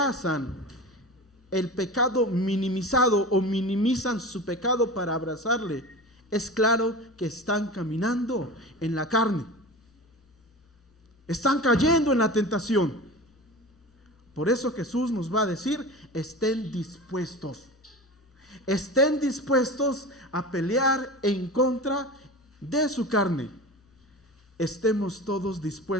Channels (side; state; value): both; normal; correlation 0.32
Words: el pecado minimizado o minimizan su pecado para abrazarle, es claro que están caminando en la carne. Están cayendo en la tentación. Por eso Jesús nos va a decir, estén dispuestos. Estén dispuestos a pelear en contra de su carne. Estemos todos